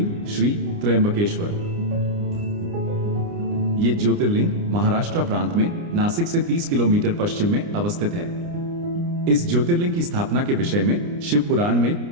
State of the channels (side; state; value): left; late; 29 ms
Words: श्री त्र्यंबकेश्वर। ये ज्योतिर्लिंग महाराष्ट्र प्रांत में नासिक से 30 किलोमीटर पश्चिम में अवस्थित है। इस ज्योतिर्लिंग की स्थापना के विषय में शिव पुराण में